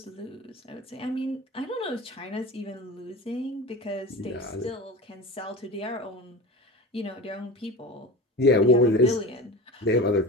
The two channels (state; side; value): normal; both; correlation 0.30